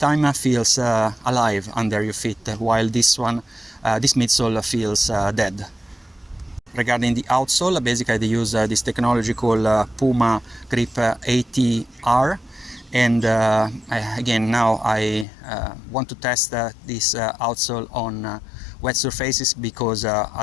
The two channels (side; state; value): right; drops out; at 15.2 s